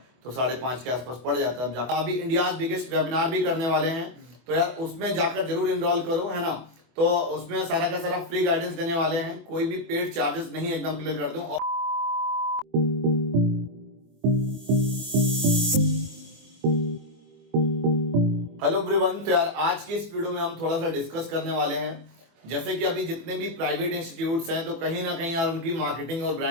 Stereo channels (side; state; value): left; late; 24 ms